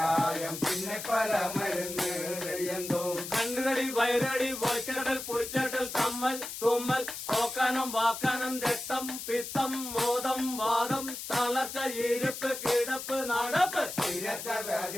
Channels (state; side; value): noise; left; hiss, 8 dB below the sound